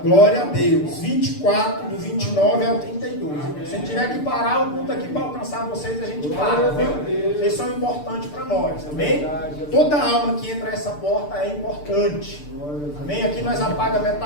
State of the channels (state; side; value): late; right; 6.8 ms